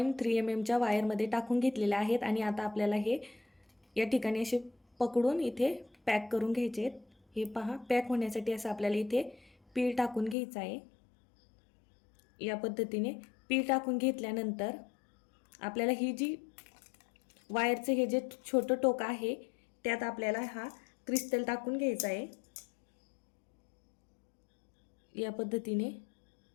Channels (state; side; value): drops out; right; at 10.4 s